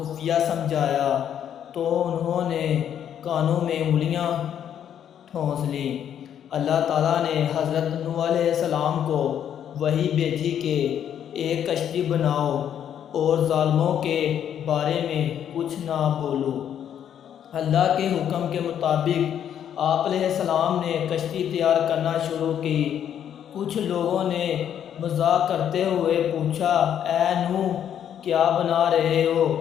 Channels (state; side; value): quieter; right; 9.5 dB